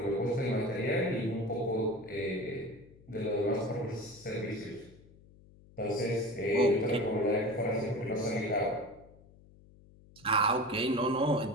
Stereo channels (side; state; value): left; noise; hum, 24 dB below the sound